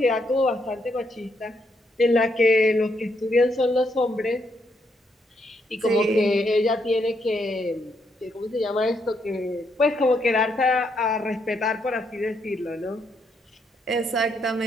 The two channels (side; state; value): both; normal; correlation 0.76